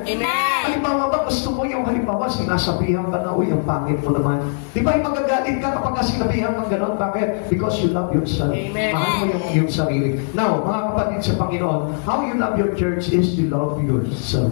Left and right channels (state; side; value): silent; right; 66 dB below the other